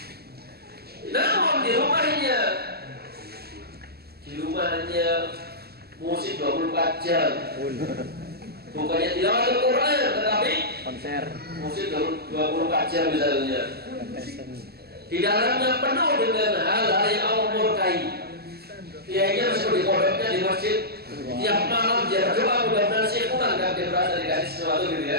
namun di rumahnya musik 24 jam, bukannya tilawatul Quran tetapi Konser. musik 24 jam misalnya. Di dalamnya penuh dengan hal-hal yang Allah murkai. Kiainya seperti pondoknya di masjid, tiap malam dia berdoa mudah-mudahan sih pulang kan dia berasa dikasih sesuatu gitu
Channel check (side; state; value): left; late; 0.46 ms